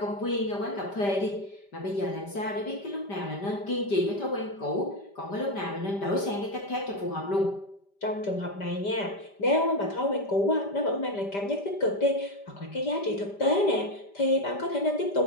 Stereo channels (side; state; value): right; late; 5.1 ms